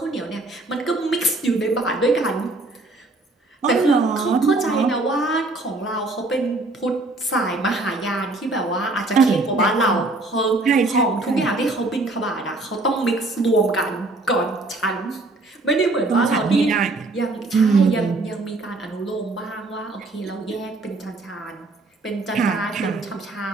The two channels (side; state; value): left; quieter; 3.0 dB